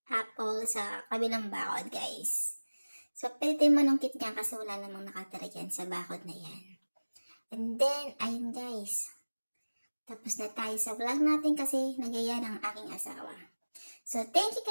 apple sa kabilang bakod, guys. So, pwede manungkit niya kasi wala namang nakatira dyan sa bakod na yan. And then, ayun guys. Tapos na tayo sa vlog natin kasi nagaya ng aking asawa. So, thank you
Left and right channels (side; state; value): both; inverted; correlation -1.00